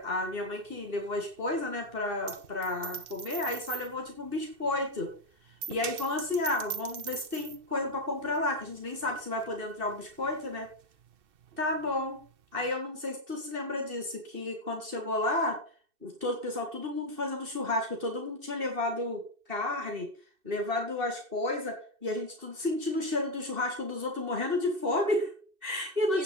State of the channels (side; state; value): left; late; 2.6 ms